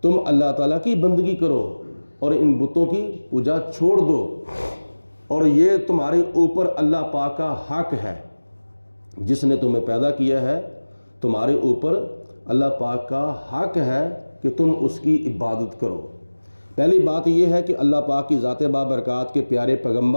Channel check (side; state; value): both; inverted; correlation -1.00